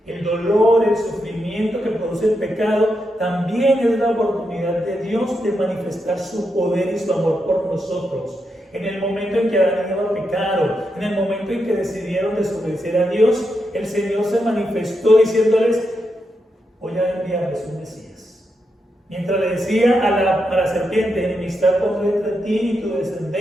El dolor, el sufrimiento que produce el pecado, también es la oportunidad de Dios de manifestar su poder y su amor por nosotros. En el momento en que Adán y Eva pecaron, en el momento en que decidieron desobedecer a Dios, el Señor se manifestó diciéndoles: voy a enviarles un Mesías. Mientras le decía a la serpiente: enemistad pondré entre ti y tu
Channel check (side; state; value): both; normal; correlation 0.84